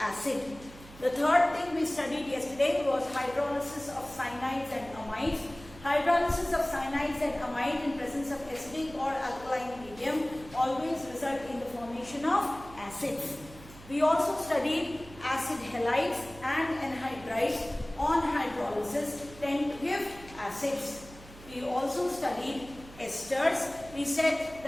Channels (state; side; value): noise; right; hum, 19 dB below the sound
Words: The third thing we studied yesterday was hydrolysis of cyanides and amides. Hydrolysis of cyanides and amide in presence of acidic or alkaline medium always result in the formation of acids. We also studied acid halides and anhydrides on hydrolysis tend to give acids. We also studied esters. We said